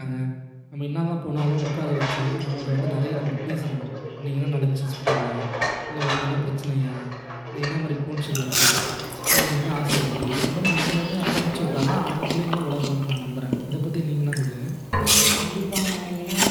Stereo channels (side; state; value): both; identical; correlation 1.00